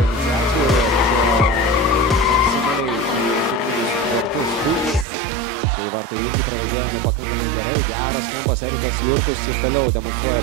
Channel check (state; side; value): drops out; left; at 5.1 s